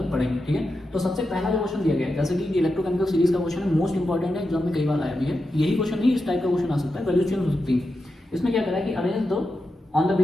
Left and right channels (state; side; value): normal; both; correlation 0.89